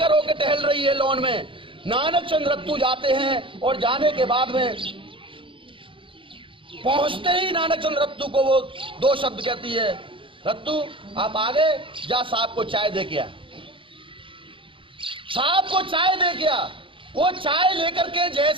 होकर टहल रही है लॉन में। नानक चंद रत्तू जाते हैं और जाने के बाद में पहुंचते ही नानकचंद रत्तू को वो दो शब्द कहती है, रत्तू आप आगे जा, साहब को चाय दे के आ। साहब को चाय दे के आ। वो चाय लेकर के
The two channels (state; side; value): late; left; 0.25 ms